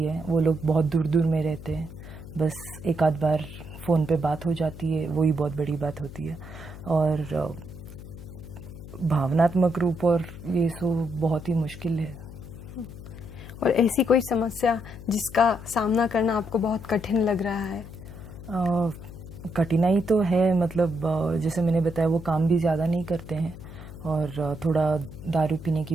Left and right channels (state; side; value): noise; left; hum, 14 dB below the sound